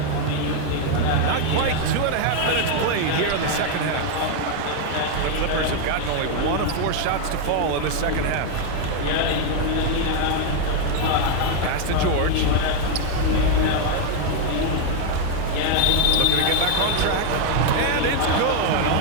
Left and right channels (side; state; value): both; different; correlation 0.00